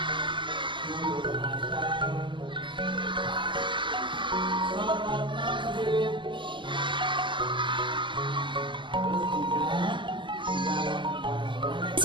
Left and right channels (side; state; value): left; late; 0.24 ms